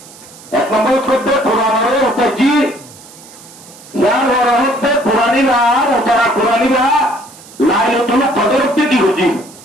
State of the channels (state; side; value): noise; right; hiss, 21 dB below the sound